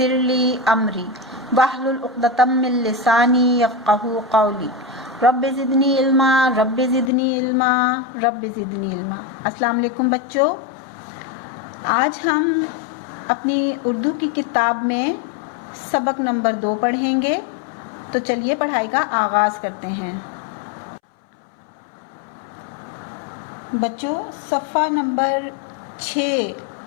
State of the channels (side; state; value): right; drops out; at 7.1 s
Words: لی امری واحلل عقدۃ من لسانی یفقہوا قولی رب زدنی علما رب زدنی علما رب زدنی علما۔ السلام علیکم بچوں، آج ہم اپنی اردو کی کتاب میں سبق نمبر 2 پڑھیں گے، تو چلیے پڑھائی کا آغاز کرتے ہیں۔ بچوں صفحہ نمبر 6